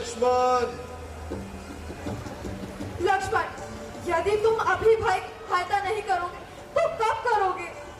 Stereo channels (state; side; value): identical; both; correlation 1.00